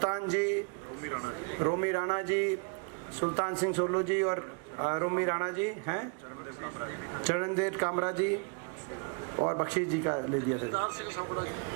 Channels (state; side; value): quieter; left; 37.1 dB